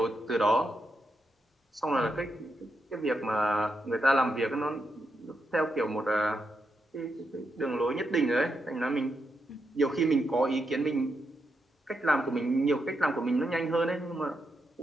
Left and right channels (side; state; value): both; normal; correlation 0.83